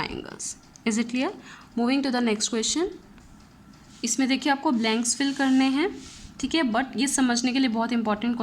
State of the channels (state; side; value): identical; both; correlation 1.00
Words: Is it clear? Moving to the next question. इसमें देखिए आपको ब्लैंक्स फिल करने हैं, ठीक है, बट ये समझने के लिए बहुत इंपॉर्टेंट